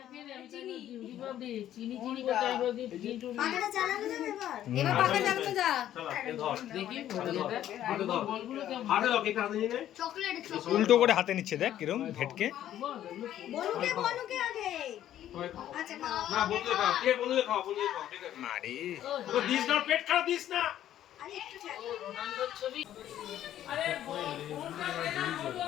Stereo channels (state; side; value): quieter; right; 11.8 dB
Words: আমি চিনি দিবাবি চিনি কোথায় বলি চিনি। পাখাটা চালানো যাবে এবার? এবার পাখা চালানো যা। চল এ ধর। দেখি হাতে ধর। বলগুলো কেমন? হাতে দাও, কেক হাতে নিয়ে নে। চকলেট উল্টো করে হাতে নিচ্ছে, দেখ কিরম ভেটকে। বলুকে আগে। আচ্ছা খাও। না বন্ধুকে খাও, কে বন্ধুকে খাও, বন্ধুকে খাও, ঠিক আছে। আরে তো দিস না, পেট খারাপ দিস না। আরে একটু ছাড়। রোনাল্ডোর ছবি। আরে ফোনটা দে না বলু